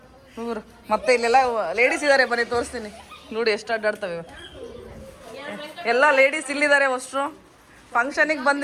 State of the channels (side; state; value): both; identical; correlation 1.00